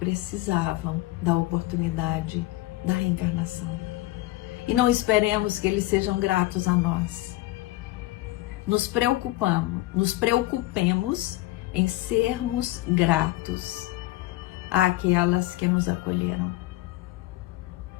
da oportunidade da reencarnação. E não esperemos que eles sejam gratos a nós. Nos preocupemos em sermos gratos àquelas que nos acolheram.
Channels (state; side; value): quieter; right; 18.0 dB